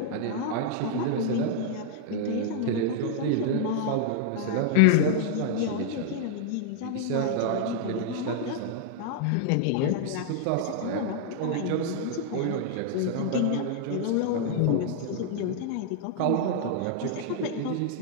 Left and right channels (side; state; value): both; different; correlation 0.00